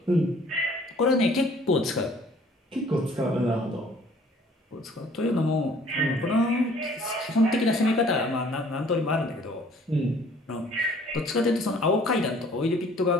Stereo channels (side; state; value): both; normal; correlation 0.56